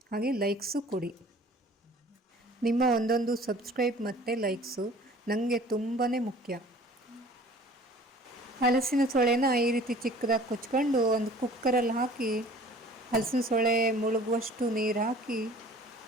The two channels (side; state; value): both; normal; correlation 0.49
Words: ಹಾಗೆ ಲೈಕ್ಸು ಕೊಡಿ. ನಿಮ್ಮ ಒಂದೊಂದು ಸಬ್ಸ್ಕ್ರೈಬ್ ಮತ್ತು ಲೈಕ್ಸು ನನಗೆ ತುಂಬಾ ಮುಖ್ಯ. ಹಲಸಿನ ಸೊಳೆನ ಈ ರೀತಿ ಚಿಕ್ಕದಾಗಿ ಕೊಚ್ಕೊಂಡು ಒಂದು ಕುಕ್ಕರಲ್ಲಿ ಹಾಕಿ ಹಲಸಿನ ಸೊಳೆ ಮುಳುಗುವಷ್ಟು ನೀರು ಹಾಕಿ